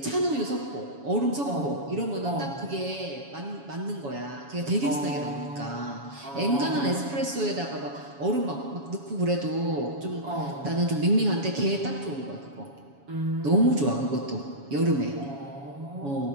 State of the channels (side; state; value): left; late; 7.2 ms